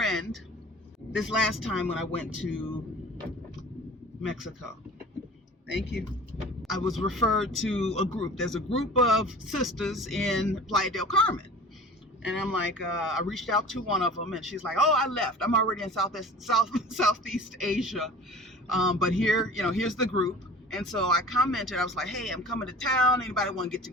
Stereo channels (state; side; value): normal; both; correlation 0.41